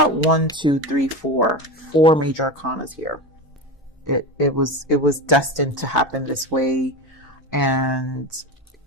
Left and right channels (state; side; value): normal; both; correlation 0.23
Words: 1, 2, 3, 4 major arcanas here. It was destined to happen this way, and